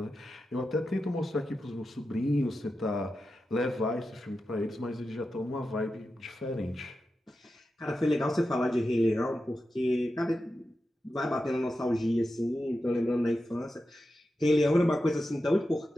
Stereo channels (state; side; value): normal; both; correlation 0.91